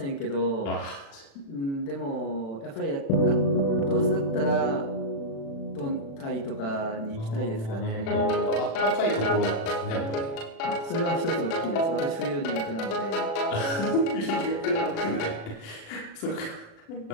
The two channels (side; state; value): right; late; 36 ms